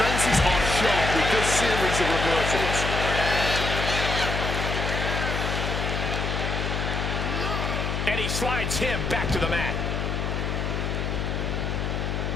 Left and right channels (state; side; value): noise; left; hum, 1 dB below the sound